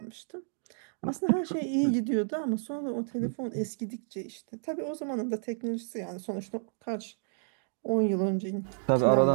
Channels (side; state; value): left; silent; digital silence